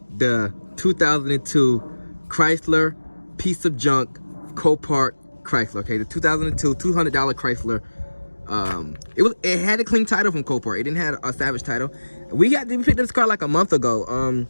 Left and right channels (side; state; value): both; inverted; correlation -1.00